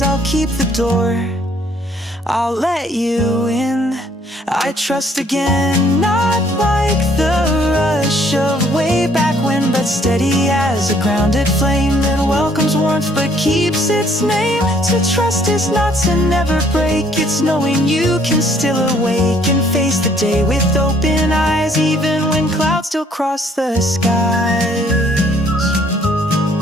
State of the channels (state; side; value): normal; both; correlation 0.63